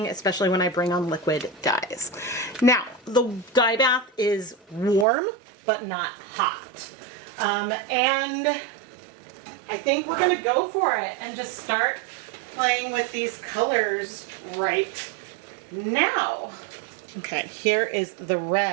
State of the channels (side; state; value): left; drops out; at 5.1 s